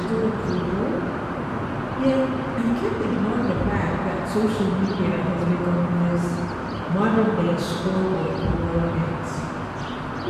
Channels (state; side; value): identical; both; correlation 1.00